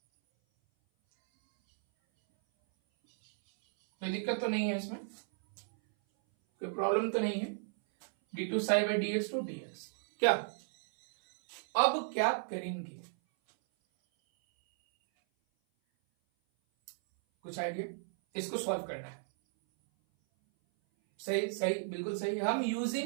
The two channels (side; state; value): left; silent; 55 dB below the other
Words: कोई दिक्कत तो नहीं है इसमें, कोई प्रॉब्लम तो नहीं है। d2 psi by dx2 dx। क्या अब क्या करेंगे, कुछ आइडिया? इसको सॉल्व करना है। सही सही, बिल्कुल सही। हम